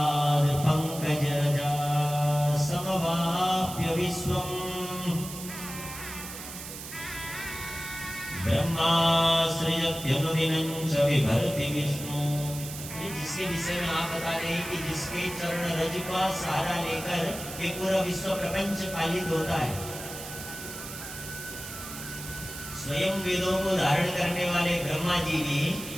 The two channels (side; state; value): right; noise; hiss, 10 dB below the sound